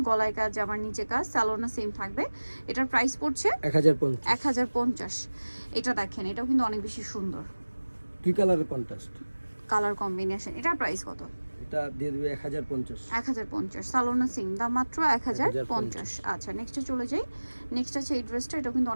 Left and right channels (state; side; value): inverted; both; correlation -1.00